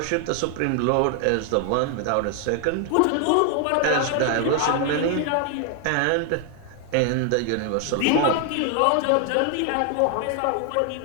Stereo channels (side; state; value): both; different; correlation 0.00